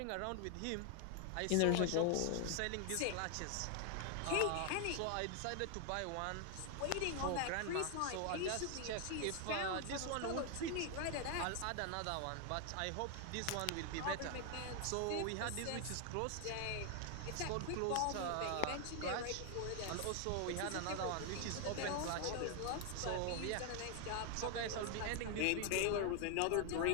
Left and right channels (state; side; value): different; both; correlation 0.00